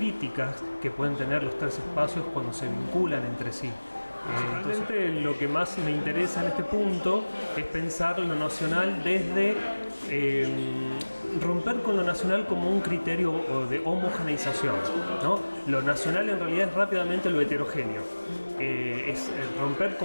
que pueden tener los tres espacios cuando se vinculan entre sí. Principalmente lo que más me interesa en este punto es pensar lo nacional desde romper con lo nacional como un criterio de homogeneización, ¿no? Lo nacional en realidad es rápidamente lo heterogéneo. Es romper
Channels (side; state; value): both; inverted; correlation -1.00